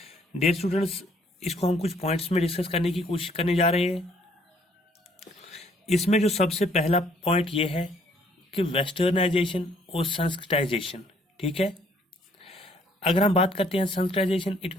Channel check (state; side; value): normal; both; correlation 0.64